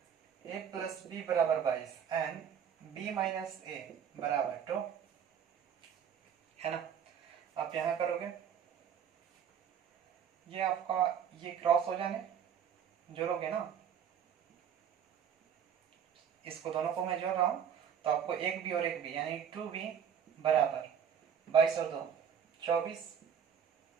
ए प्लस बी बराबर 22 एंड बी माइनस ए बराबर 2 है ना। आप यहां करोगे, ये आपका ये क्रॉस हो जाने जोड़ोगे ना, इसको दोनों को मैं जोड़ रहा हूं तो आपको एक बी और एक बी यानी 2b बराबर 22 और 2 24,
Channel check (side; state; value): left; quieter; 8.1 dB